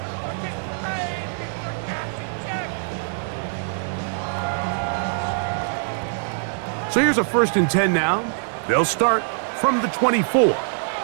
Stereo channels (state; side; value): silent; left; digital silence